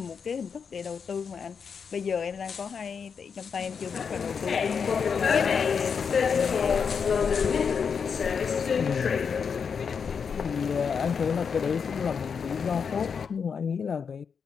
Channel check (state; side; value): quieter; right; 6.3 dB